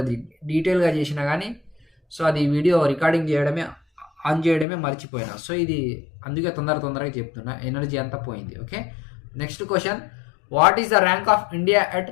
డీటెయిల్గా చేసిన కానీ సో అది వీడియో రికార్డింగ్ ఆన్ చేయడమే మర్చిపోయినా. సో ఇది అందుకే తొందరగా చెప్తున్నా, ఎనర్జీ అంతా పోయింది. Okay, next question, what is the rank of India at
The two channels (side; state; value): right; drops out; at 4.7 s